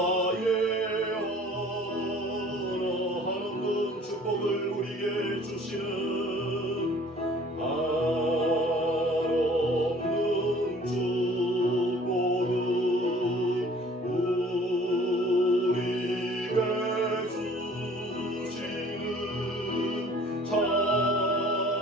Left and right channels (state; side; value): normal; both; correlation 0.52